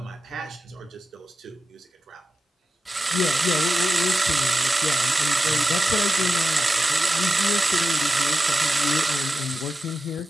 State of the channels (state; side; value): normal; both; correlation 0.92